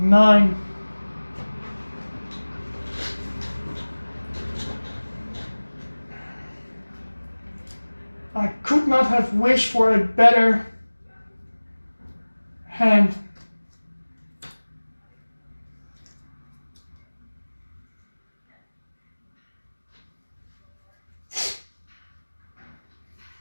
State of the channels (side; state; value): both; inverted; correlation -1.00